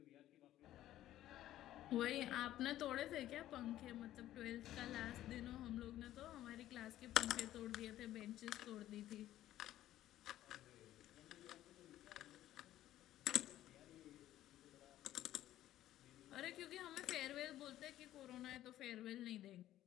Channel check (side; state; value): right; quieter; 13.5 dB